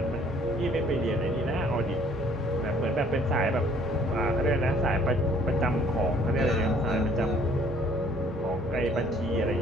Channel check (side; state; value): both; normal; correlation 0.59